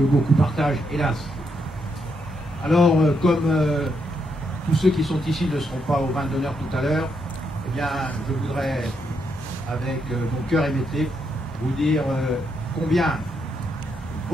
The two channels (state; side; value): normal; both; correlation 0.79